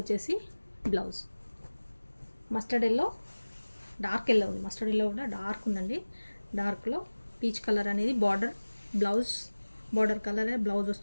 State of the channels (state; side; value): inverted; both; correlation -1.00